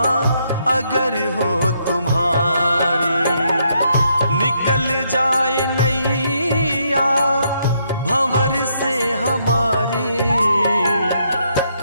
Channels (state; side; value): inverted; both; correlation -0.75